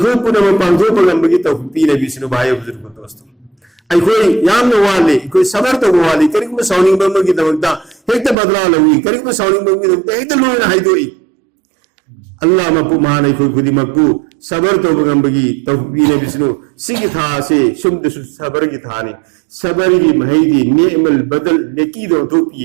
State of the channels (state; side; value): drops out; left; at 8.3 s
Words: पुनम पांगो पगंबगी तौफीक पीने बिसनु भाई बुजुर्ग दोस्तों अखोई यामन वाले अखोई सबर तो वाले करिक में साउनिंग बमगी दमकता हेक्ता बदला लवी करिक में साउनिंग बमगी दमकता हेक्ता लोना हाइदोई अल्लाह मपु मान अखोई खुदी मक्कू सबर तो बगंबगी तौफीक पीने बिसनु सिगी था से शुद्ध सबर की थाने सबर की महदी नेमल बदल नेकी दो